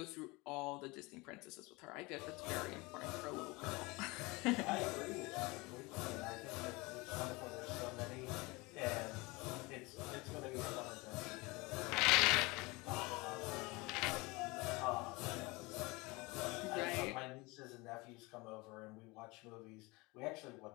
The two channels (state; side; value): quieter; right; 24.5 dB